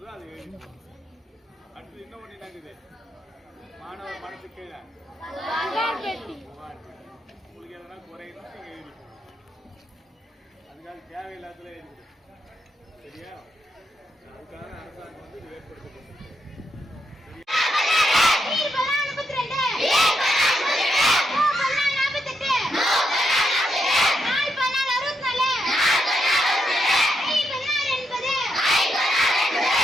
அது எழுதணும். அடுத்து இன்னும் ஒண்ணு என்னங்குது? மாணவர் மனசு கீழே உங்களுக்கு எதனா குறையணும் நீங்க எழுதிக்கணும். அதுக்காக தேவையில்லாததுல எழுதிக்கணும். சரியா? அதுக்காக அரசாங்கம் வந்து இது ஏற்படுத்தப்படும்.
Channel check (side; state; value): both; normal; correlation 0.81